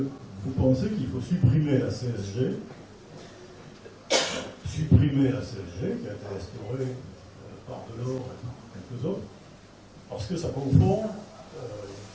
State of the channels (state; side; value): identical; both; correlation 1.00